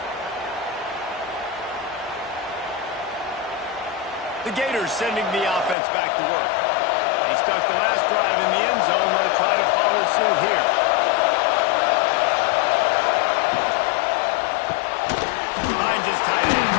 The Gators sending the offense back to work. They stuck the last drive in the end zone. They'll try to follow suit here. Finds his tight end.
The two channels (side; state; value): right; drops out; at 5.8 s